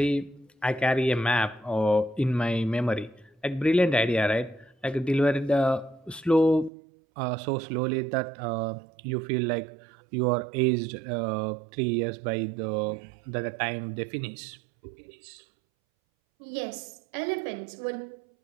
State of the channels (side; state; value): left; drops out; at 6.7 s